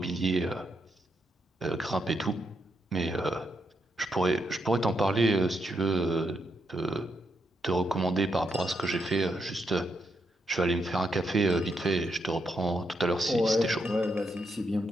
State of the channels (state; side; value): normal; both; correlation 0.80